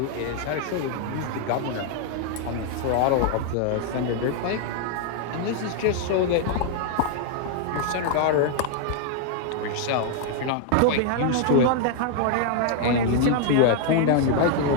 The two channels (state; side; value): different; both; correlation 0.00